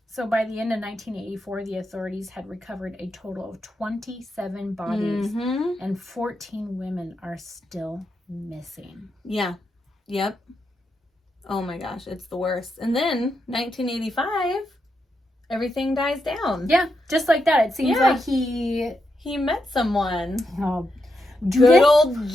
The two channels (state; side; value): normal; both; correlation 0.84